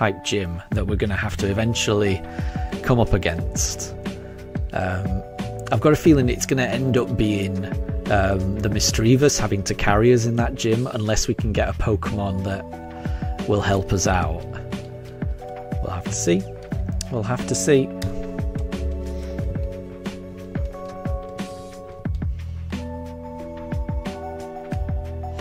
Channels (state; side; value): identical; both; correlation 1.00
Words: gym that we're going to have to eventually come up against. I've got a feeling it's going to end up being the Misdreavus having to carry us in that gym unless we can get a Pokemon that will help us out. We'll have to see. We'll have to see.